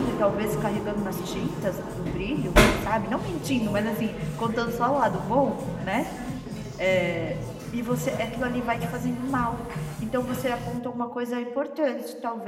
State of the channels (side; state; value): both; identical; correlation 1.00